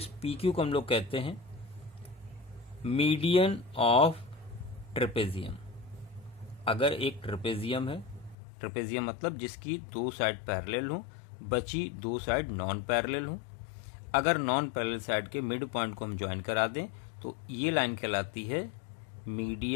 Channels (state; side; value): drops out; right; at 8.3 s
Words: पी क्यू को हम लोग कहते हैं मीडियन ऑफ ट्रेपेजियम। अगर एक ट्रेपेजियम है, ट्रेपेजियम मतलब जिसकी दो साइड पैरेलल हो, बची दो साइड नॉन पैरेलल हो, अगर नॉन पैरेलल साइड के मिड पॉइंट को हम ज्वाइन करा दें तो ये लाइन कहलाती है